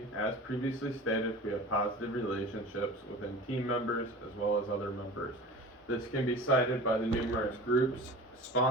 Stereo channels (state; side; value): normal; both; correlation 0.37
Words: as previously stated, we have positive relationships within team members as well as other members. This can be cited by the numerous groups